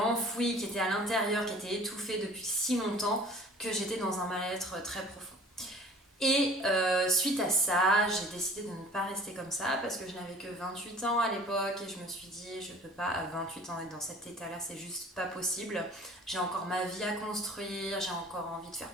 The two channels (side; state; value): both; normal; correlation 0.47